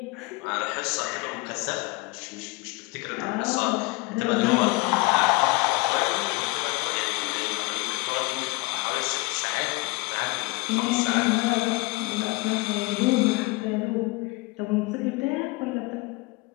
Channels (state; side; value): quieter; right; 24.0 dB